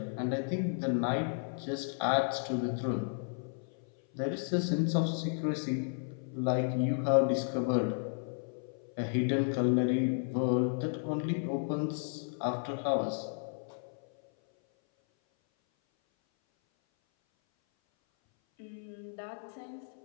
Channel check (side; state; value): right; silent; 56 dB below the other